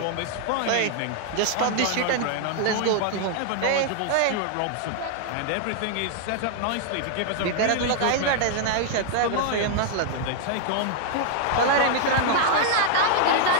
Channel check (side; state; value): both; different; correlation -0.01